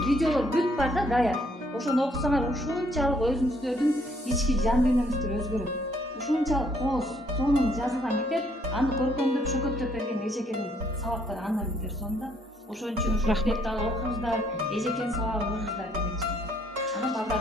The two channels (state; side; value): normal; both; correlation 0.66